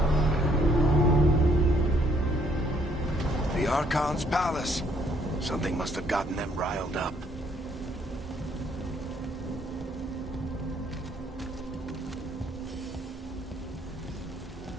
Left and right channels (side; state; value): both; normal; correlation 0.67